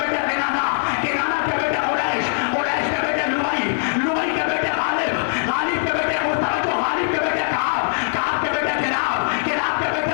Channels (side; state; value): right; silent; 65 dB below the other